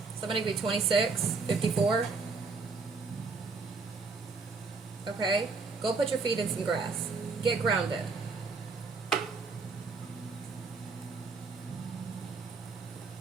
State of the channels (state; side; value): quieter; left; 4.3 dB